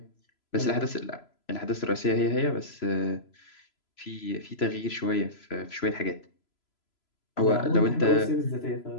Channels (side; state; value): right; late; 3.0 ms